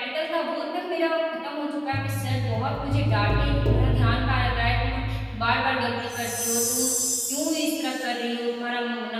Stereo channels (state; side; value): identical; both; correlation 1.00